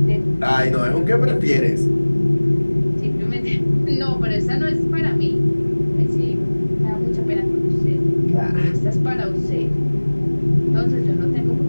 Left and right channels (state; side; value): inverted; both; correlation -1.00